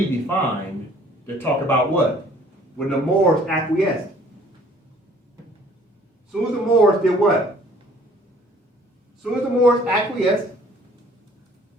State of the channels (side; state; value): both; normal; correlation 0.56